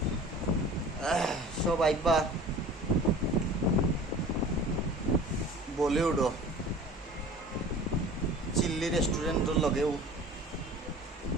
সব আইবা বলিউডও চিল্লি রেস্টুরেন্টের লগেও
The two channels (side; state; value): both; normal; correlation 0.43